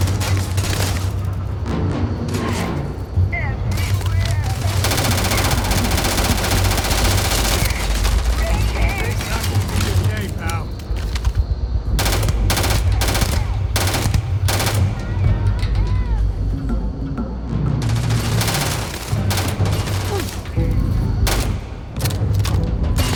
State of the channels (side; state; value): both; identical; correlation 1.00